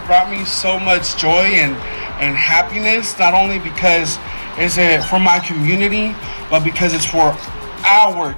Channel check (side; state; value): both; inverted; correlation -1.00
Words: brought me so much joy and happiness, not only because it's for my community, but because it's for our